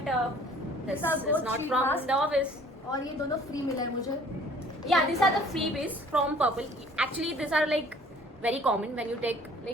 this These are is both not sheet from mask. the office. और ये दोनों फ्री मिला है मुझे. Yeah, these are the freebies from Purple. Actually, these are like very common when you take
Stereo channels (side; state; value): both; normal; correlation 0.53